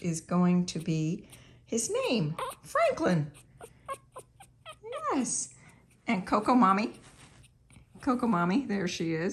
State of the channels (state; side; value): identical; both; correlation 1.00